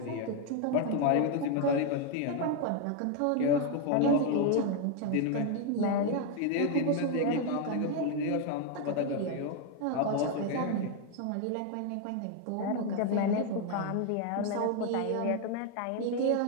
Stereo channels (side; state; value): both; different; correlation 0.01